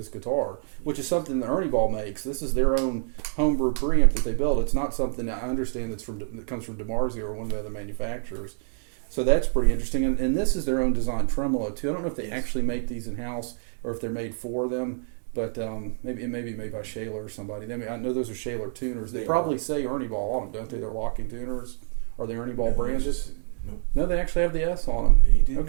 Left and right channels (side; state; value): left; silent; 61 dB below the other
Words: guitar, which is something that ErnieBall makes. This is their own homebrew preamp that they build. It's not something that I understand that comes from DiMarzio or one of the other manufacturers. So that's pretty interesting. And this is their own design tremolo too. I don't know if they actually make these in house or if they're made for them. But maybe it may be made by Schaller or somebody. I know those are Schaller tuners. They probably say ErnieBall on them, don't they? They're locking tuners. Are they ErnieBall branded? Nope. No, they actually have the S on them. They do.